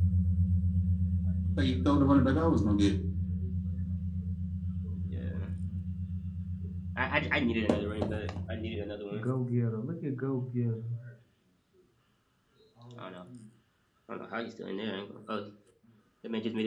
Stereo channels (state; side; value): identical; both; correlation 1.00